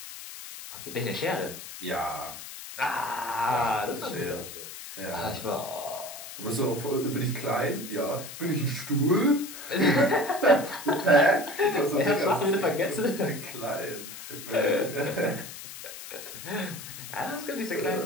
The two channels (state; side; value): noise; left; hiss, 12 dB below the sound